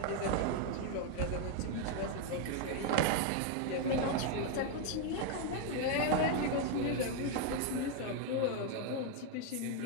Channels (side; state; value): both; different; correlation 0.01